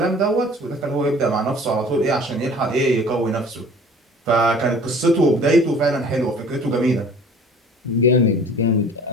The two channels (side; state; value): both; normal; correlation 0.47